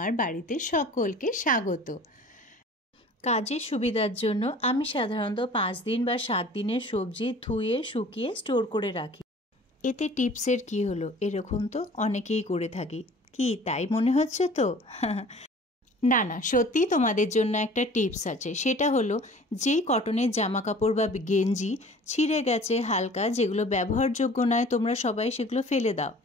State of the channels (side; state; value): both; normal; correlation 0.47